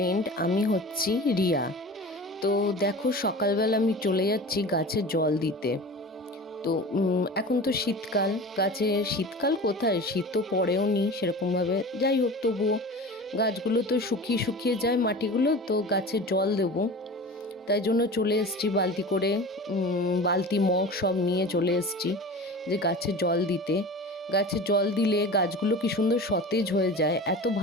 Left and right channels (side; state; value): both; normal; correlation 0.35